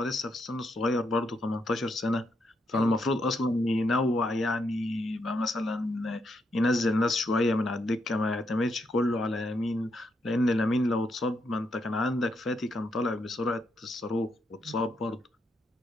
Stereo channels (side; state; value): both; normal; correlation 0.79